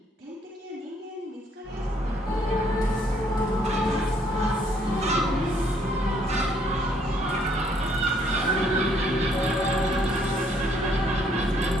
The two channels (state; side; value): normal; both; correlation 0.67